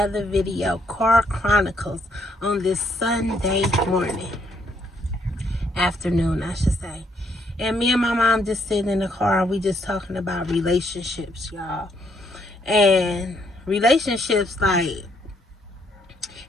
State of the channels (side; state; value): both; normal; correlation 0.72